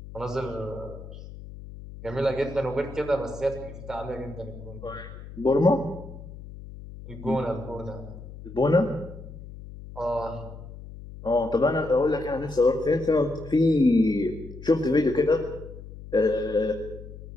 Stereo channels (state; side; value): noise; left; hum, 14 dB below the sound